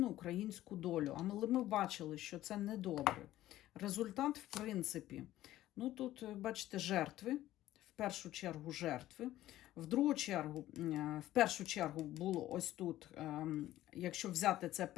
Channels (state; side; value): quieter; right; 14.5 dB